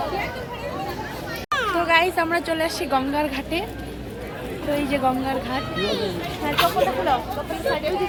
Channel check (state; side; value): identical; both; correlation 1.00